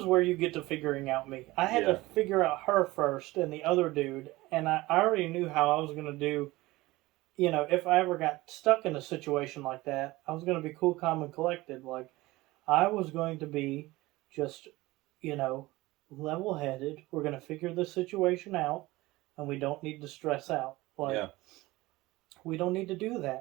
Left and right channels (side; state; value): left; quieter; 19.7 dB